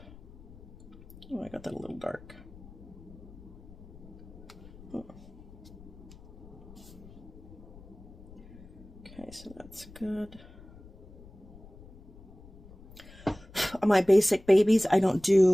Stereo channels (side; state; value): left; noise; rumble, 19 dB below the sound